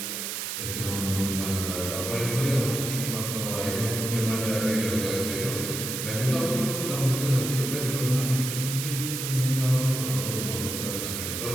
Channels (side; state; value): right; noise; hiss, 4 dB below the sound